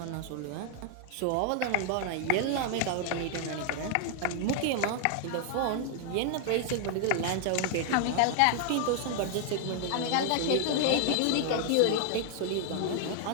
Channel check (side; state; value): both; different; correlation 0.00